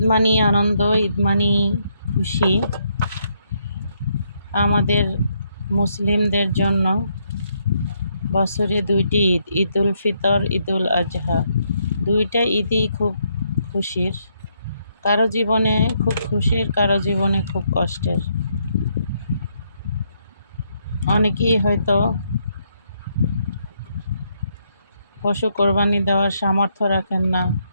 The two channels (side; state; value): both; inverted; correlation -0.75